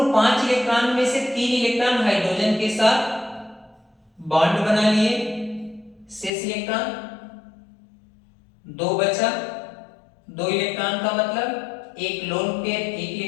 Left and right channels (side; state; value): right; drops out; at 6.3 s